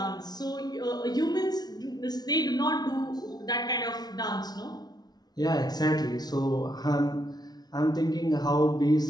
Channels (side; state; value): right; late; 0.19 ms